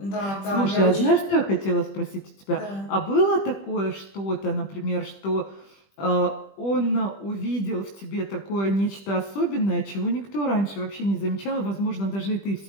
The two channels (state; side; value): late; right; 20 ms